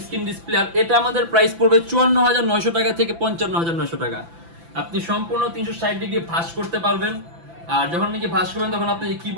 স্ক্রিন ডিসপ্লে। আর এটা আমাদের প্রাইস পড়বে 54,900 টাকা থেকে 55,900 টাকা। আপনি সম্পূর্ণ 360 ডিগ্রি ভাঁজ করতে পারবেন। আর যখন নাকি ভাঁজ করবেন তখন আপনার যে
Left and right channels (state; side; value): late; left; 5.9 ms